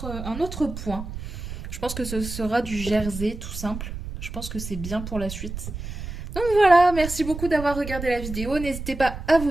point. Je pense que ce sera du jersey tout simple. Je pense que c'est bien pour la suite. Donc voilà, merci beaucoup d'avoir regardé la vidéo. N'hésitez pas à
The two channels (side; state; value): right; noise; rumble, 8 dB below the sound